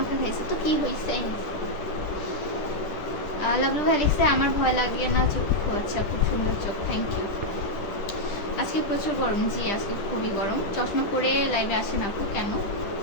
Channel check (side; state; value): right; late; 10 ms